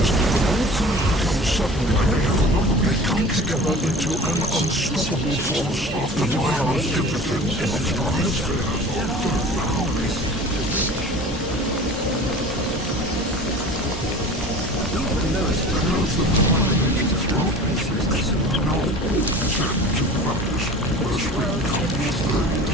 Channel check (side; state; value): both; normal; correlation 0.40